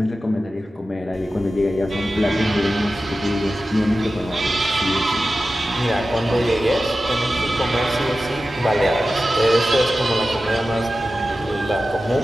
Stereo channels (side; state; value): both; normal; correlation 0.94